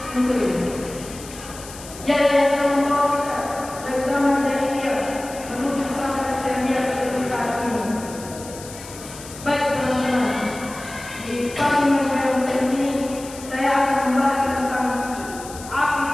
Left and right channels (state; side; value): noise; left; hiss, 15 dB below the sound